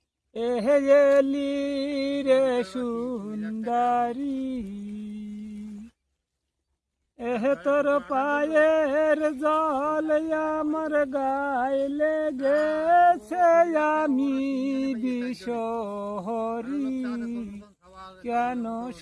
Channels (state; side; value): identical; both; correlation 1.00